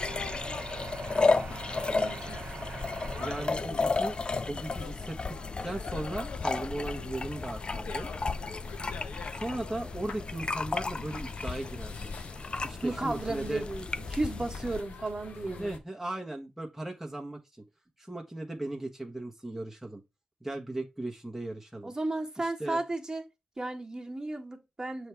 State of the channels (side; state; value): both; normal; correlation 0.89